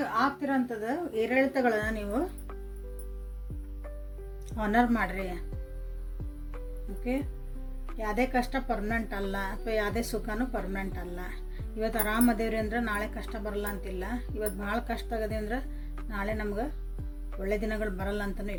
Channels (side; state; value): both; identical; correlation 1.00